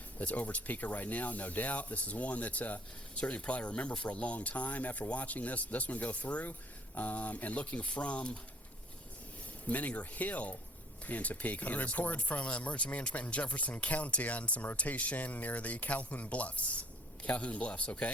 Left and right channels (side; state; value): both; normal; correlation 0.57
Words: that's over Topeka right now, no doubt. This is one that certainly probably remember for a long time after watching this one go through. And looking from Menninger Hill in Topeka. A report from Emergency Management in Jefferson County on some rotation near the Calhoun Bluffs. Calhoun Bluffs,